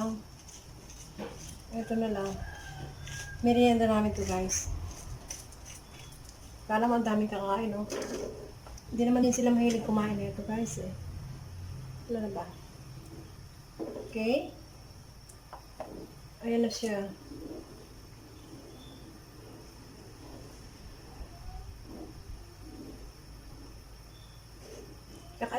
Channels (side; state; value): both; identical; correlation 1.00